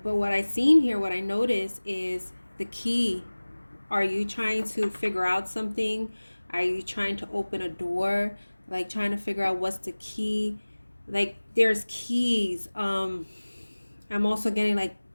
But what I seen here, what I noticed is the key. Are you trying to figure out something? Are you trying to open a door? Like trying to figure out what's the key? Like there's keys. I'm also getting like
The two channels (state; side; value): inverted; both; correlation -1.00